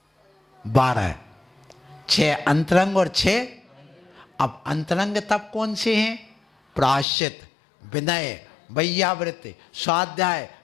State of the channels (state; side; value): drops out; right; at 7.1 s